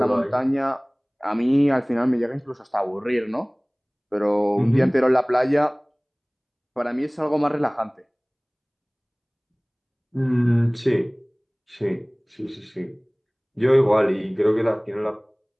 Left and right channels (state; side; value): identical; both; correlation 1.00